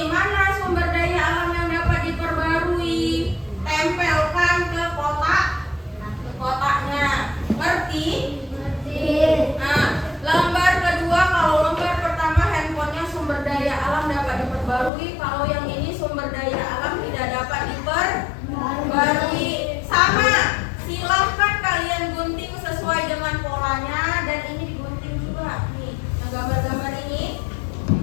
Mana sumber daya alam yang dapat diperbarui? Tempelkan ke kotaknya. Ngerti? Nah, lembar kedua, kalau lembar pertama handphonenya sumber daya alam dapat diperbarui, kalau yang ini sumber daya alam tidak dapat diperbarui. Sama, silahkan kalian gunting sesuai dengan polanya, dan ini digunting juga. Nih, yang gambar-gambar ini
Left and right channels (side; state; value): right; drops out; at 14.9 s